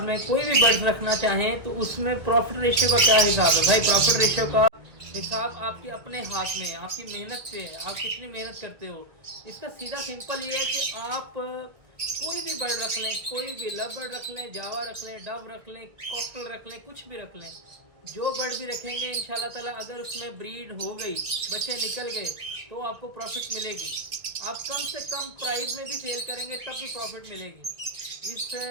कोई भी बर्ड्स रखना चाहें तो उसमें प्रॉफिट रेशियो का क्या हिसाब है? भाई प्रॉफिट रेशियो का हिसाब आपके अपने हाथ में है, आपकी मेहनत पे है, आप कितनी मेहनत करते हो। इसका सीधा सिंपल ये है कि आप कोई भी बर्ड रख लें, कोई भी लव बर्ड रख लें, जावा रख लें, डव रख लें, कॉकटेल रख लें, कुछ भी रख लें, जो बर्ड भी रखेंगे इंशाल्लाह ताला अगर उसमें ब्रीड हो गई, बच्चे निकल गए तो आपको प्रॉफिट मिलेगी। आप कम से कम प्राइस में भी सेल करेंगे तब भी प्रॉफिट मिलेगी। इस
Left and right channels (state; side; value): late; left; 1.6 ms